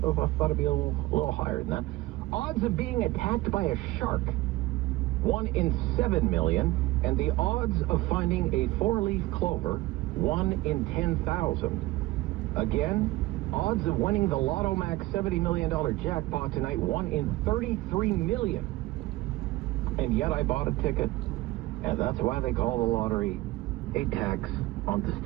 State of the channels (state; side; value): quieter; left; 18.6 dB